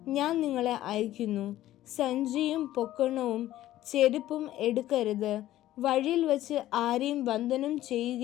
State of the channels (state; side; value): quieter; right; 14.1 dB